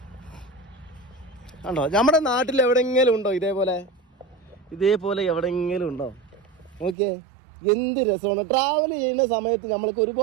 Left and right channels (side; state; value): left; drops out; at 7.0 s